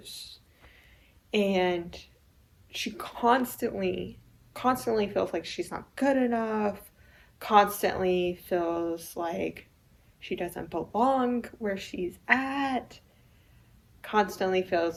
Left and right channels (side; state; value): both; identical; correlation 1.00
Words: And she constantly feels like she's not good enough, constantly feels like she doesn't belong where she's at, constantly